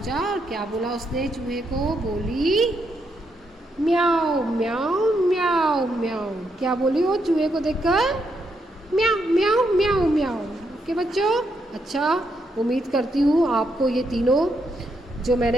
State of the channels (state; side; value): normal; both; correlation 0.79